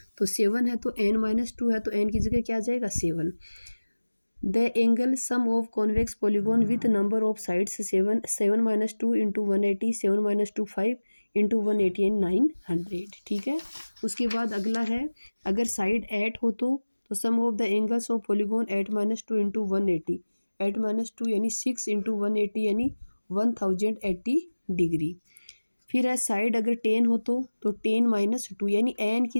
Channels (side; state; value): both; inverted; correlation -1.00